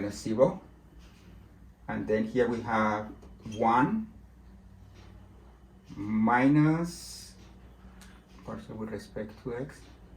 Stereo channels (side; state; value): both; identical; correlation 1.00